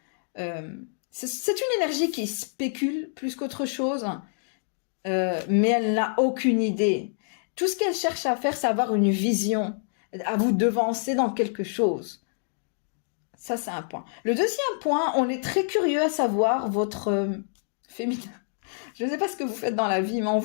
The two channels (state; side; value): silent; right; digital silence